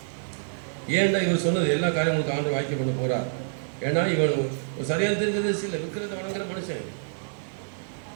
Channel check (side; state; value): left; silent; digital silence